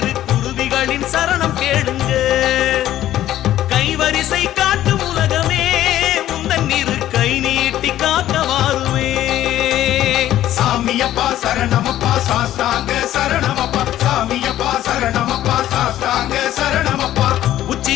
குருவிகளின் சரணம் கேளுங்க கைவரிசை காட்டும் உலகமே உந்தன் இரு கை நீட்டி காக்க வாருவே சாமியப்பா சரணமப்பா சாஸ்தாங்க சரணமப்பா சாமியப்பா சரணமப்பா சாஸ்தாங்க சரணமப்பா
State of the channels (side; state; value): right; quieter; 13.0 dB